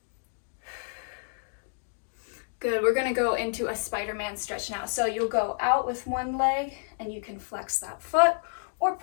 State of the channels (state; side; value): silent; right; digital silence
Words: Good, we're gonna go into a Spider-Man stretch now. So you'll go out with one leg and you can flex that foot or